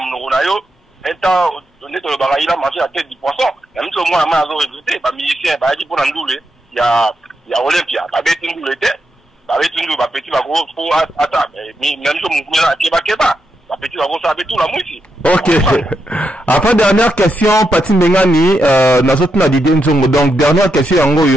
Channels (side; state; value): both; normal; correlation 0.84